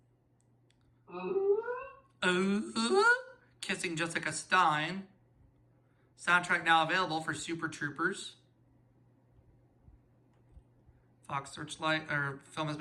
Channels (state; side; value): identical; both; correlation 1.00